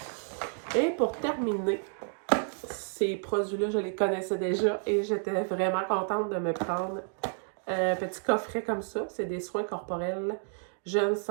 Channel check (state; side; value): silent; left; 57 dB below the other